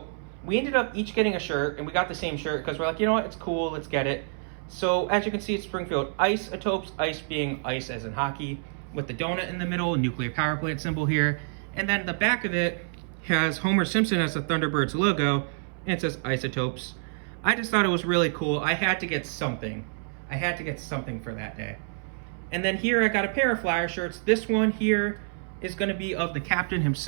we ended up each getting a shirt, and we got the same shirt because we're like, you know what, it's cool, let's get it. So as you can see, it's Springfield Isotopes, ice being ice as in hockey, with the donut in the middle, nuclear power plant symbol here. And then the back of it has Homer Simpson as the Thunderbirds logo, and it says Isotopes. I just thought it was really cool. I had to get something. I had to get something for that day. And then here I got a pair of Flyer shirts. This one here is going to be of the captain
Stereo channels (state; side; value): silent; left; 59 dB below the other